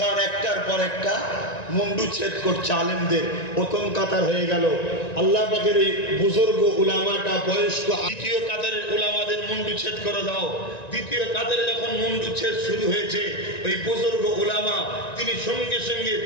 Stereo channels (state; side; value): late; right; 1.9 ms